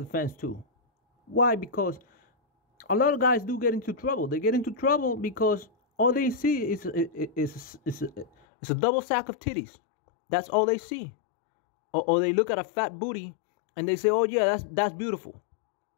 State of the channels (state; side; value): drops out; right; at 8.3 s